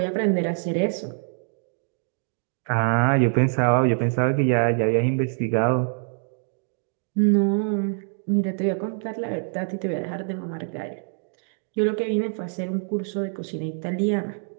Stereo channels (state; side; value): silent; left; 62 dB below the other